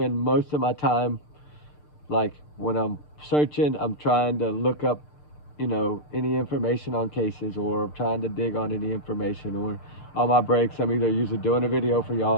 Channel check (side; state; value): right; late; 6.7 ms